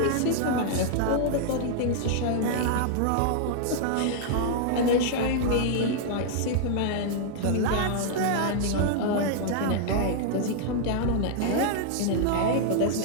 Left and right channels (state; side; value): different; both; correlation -0.01